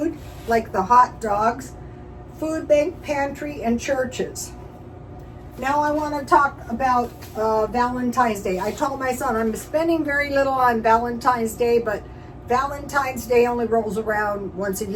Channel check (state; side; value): identical; both; correlation 1.00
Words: like the hot dogs, food bank, pantry, and churches. Now I want to talk about Valentine's Day. I told my son I'm spending very little on Valentine's Day, but Valentine's Day only rolls around once a